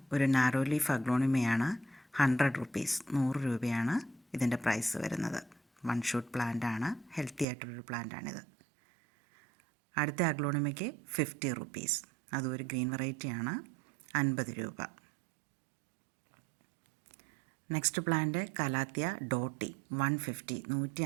ഒരു നാരോ ലീഫ് അഗ്ലോണിമയാണ്. 100 റുപ്പീസ് 100 രൂപയാണ് ഇതിൻ്റെ പ്രൈസ് വരുന്നത്. വൺ ഷൂട്ട് പ്ലാന്റ് ആണ്. ഹെൽത്തി ആയിട്ടുള്ളൊരു പ്ലാന്റാണിത്. അടുത്ത അഗ്ലോണിമയ്ക്ക് 50 റുപ്പീസ്, അതും ഒരു ഗ്രീൻ വെറൈറ്റിയാണ്. 50 രൂപ. നെക്സ്റ്റ് പ്ലാന്റ് കലാത്തിയ ഡോട്ടി 150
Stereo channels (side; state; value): left; drops out; at 7.5 s